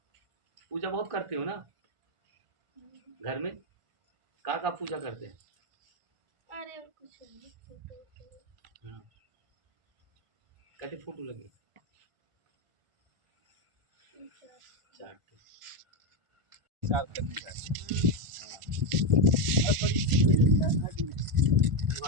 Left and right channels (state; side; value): late; left; 1.5 ms